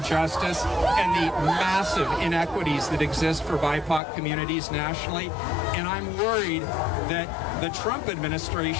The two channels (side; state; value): right; drops out; at 4.0 s